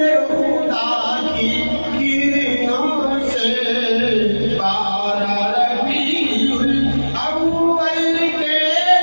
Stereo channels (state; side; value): inverted; both; correlation -1.00